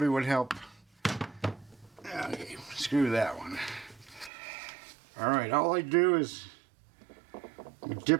would help. Okay, screw that one. Alright, all I do is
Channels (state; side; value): drops out; left; at 4.3 s